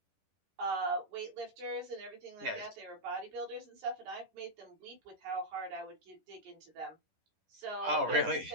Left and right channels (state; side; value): late; left; 10 ms